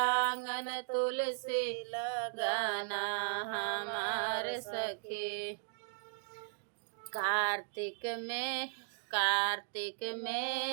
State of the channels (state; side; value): silent; left; digital silence